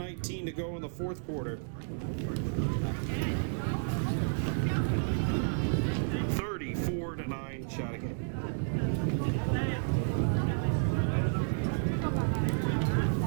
to go in the fourth quarter. 34-9 Chateauguay.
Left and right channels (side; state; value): left; silent; digital silence